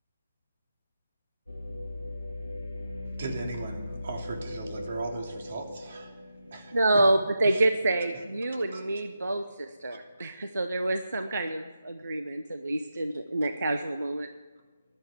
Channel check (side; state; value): both; inverted; correlation -0.88